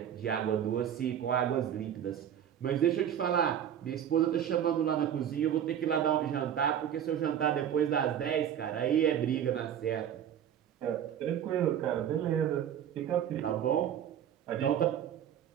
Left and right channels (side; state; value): left; quieter; 9.6 dB